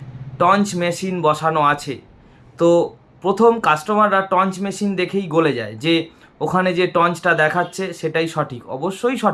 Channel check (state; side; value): identical; both; correlation 1.00